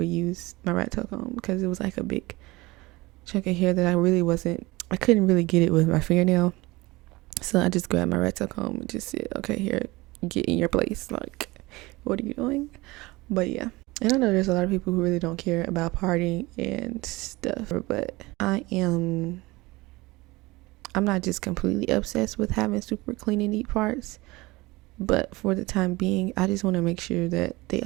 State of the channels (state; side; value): quieter; left; 21.7 dB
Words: use my rat tail comb because it was like a big chunk of hair that I couldn't really get it with my fingernail. So I just grabbed my rat tail comb and just said, okay, here, get in your place. Like, what are you doing? But yeah. And I know there's a lot of people who really don't care about parting and stuff, but I'm not just completely obsessed with having super clean and neat parts. But for the time being, I just want to make sure that they